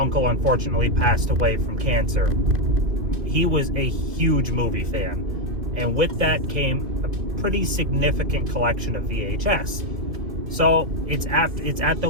unfortunately passed away from cancer. He was a huge movie fan. And with that came a pretty significant collection of VHS. So it's at the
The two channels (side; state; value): left; late; 2.6 ms